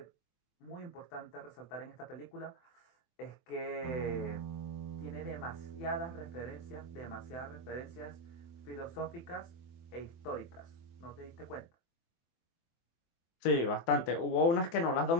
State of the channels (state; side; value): late; right; 24 ms